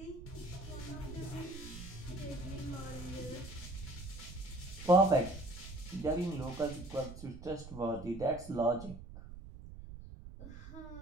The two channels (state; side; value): noise; right; rumble, 12 dB below the sound